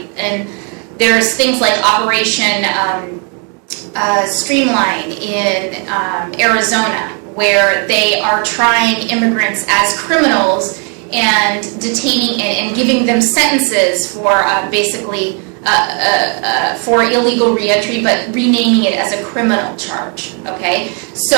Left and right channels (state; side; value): quieter; left; 38.6 dB